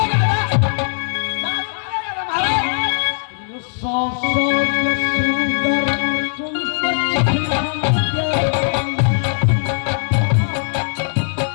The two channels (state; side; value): silent; right; digital silence